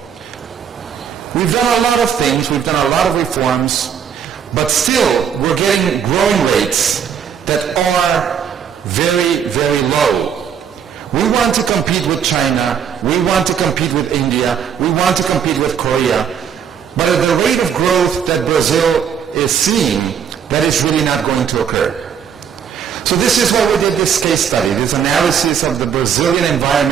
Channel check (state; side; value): quieter; left; 8.0 dB